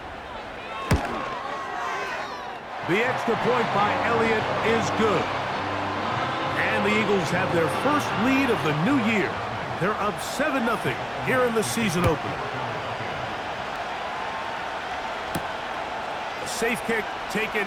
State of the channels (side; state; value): both; identical; correlation 1.00